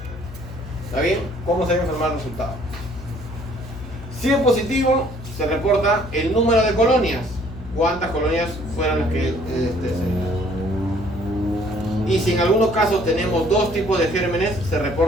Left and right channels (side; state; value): left; noise; hum, 13 dB below the sound